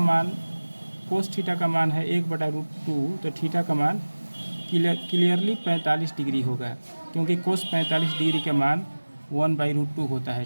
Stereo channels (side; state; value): both; inverted; correlation -1.00